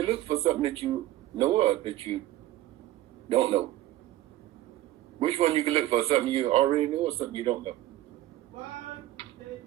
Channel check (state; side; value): quieter; left; 14.8 dB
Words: look for something that you know of that you don't know. Which one you can look for? Something you already know or something you don't know?